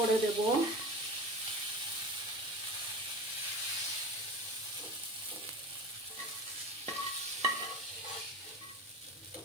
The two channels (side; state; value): both; normal; correlation 0.32